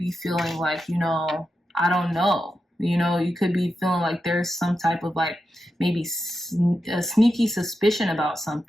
feeling like, you know, I don't know. You know, you could be feeling like there's some type of like maybe a sneaky suspicion about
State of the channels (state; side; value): normal; both; correlation 0.89